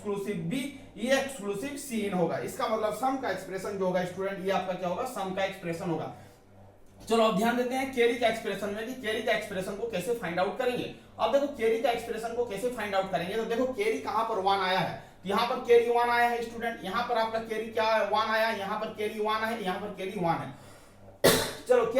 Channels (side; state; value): both; identical; correlation 1.00